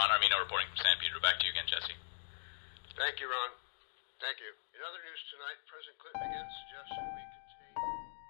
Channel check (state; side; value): silent; right; digital silence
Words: Armino reporting from San Pedro. Back to you again, Jesse. Thank you, Ron. Thank you. In other news tonight, President Clinton again suggested we contain...